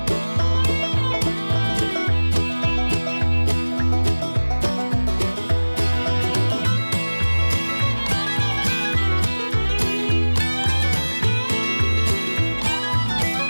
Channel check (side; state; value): both; inverted; correlation -1.00